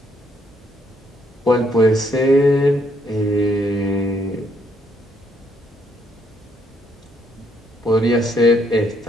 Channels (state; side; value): normal; both; correlation 0.72